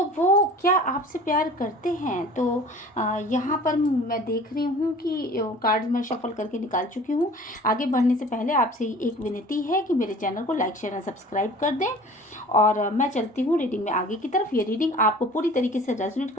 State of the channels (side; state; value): both; normal; correlation 0.45